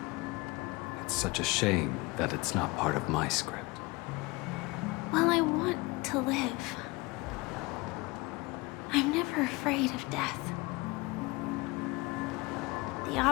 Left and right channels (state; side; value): quieter; right; 23.7 dB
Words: It's such a shame that it's not part of my script. Well, I want to live. I'm never afraid of death. The